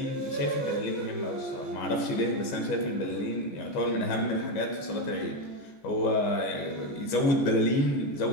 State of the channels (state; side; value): late; right; 15 ms